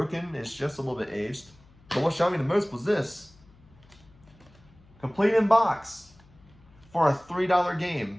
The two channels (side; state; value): left; noise; hum, 27 dB below the sound